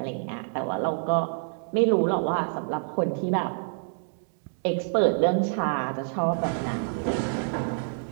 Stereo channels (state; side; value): silent; left; digital silence